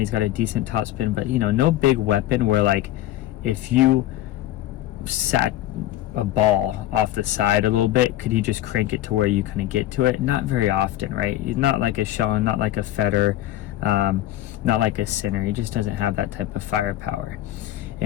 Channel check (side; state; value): right; quieter; 14.0 dB